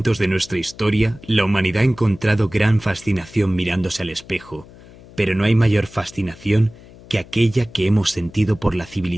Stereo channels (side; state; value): left; noise; hum, 21 dB below the sound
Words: de nuestra historia, la humanidad ha encontrado gran fascinación mirándose al espejo, pero no hay mayor fascinación que aquella que hemos sentido por la